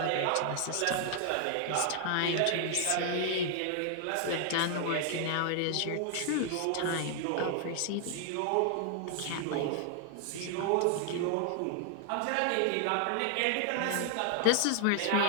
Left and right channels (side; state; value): both; different; correlation 0.00